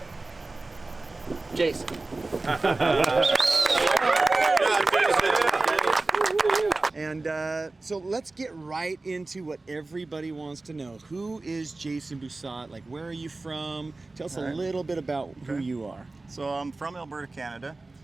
Jason. And so let's get right into what everybody wants to know. Who is Jason Busat? Like, where are you from? Tell us a little bit about who you are. So I'm from Alberta, Canada,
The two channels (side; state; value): left; quieter; 3.3 dB